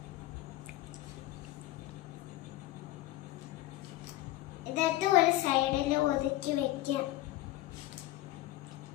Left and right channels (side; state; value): right; quieter; 16.4 dB